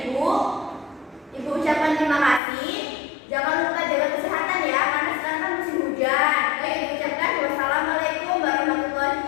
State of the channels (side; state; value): right; drops out; at 2.4 s